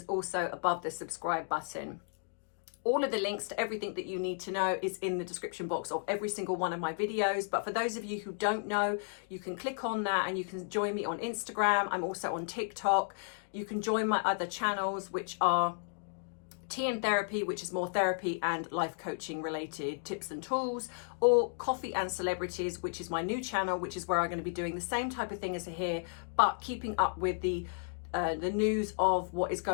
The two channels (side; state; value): right; silent; digital silence